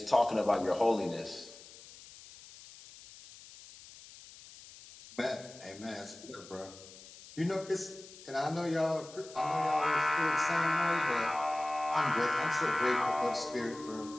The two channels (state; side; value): noise; left; hiss, 19 dB below the sound